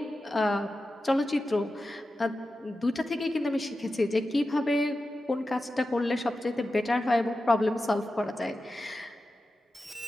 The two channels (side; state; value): both; normal; correlation 0.92